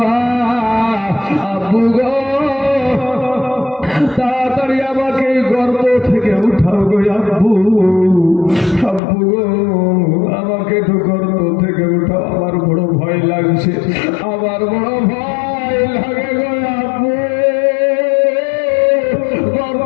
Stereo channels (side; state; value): right; drops out; at 9.0 s